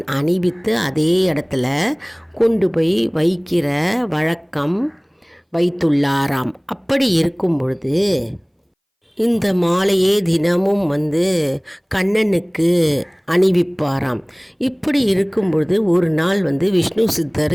அணிவித்து அதே இடத்துல கொண்டு போய் வைக்கிற வழக்கம் வைத்துள்ளாராம். அப்படி இருக்கும் பொழுது இந்த மாலையே தினமும் கண்ணனுக்கு அணிவிப்பாராம். இப்படி இருக்கும் பொழுது ஒரு நாள் விஷ்ணு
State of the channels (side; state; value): both; identical; correlation 1.00